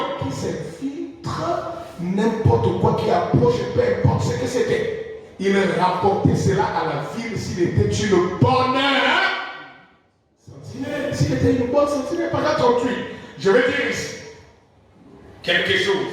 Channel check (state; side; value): identical; both; correlation 1.00